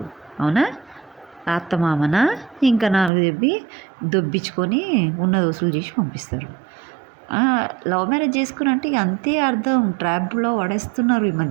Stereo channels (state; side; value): drops out; left; at 3.1 s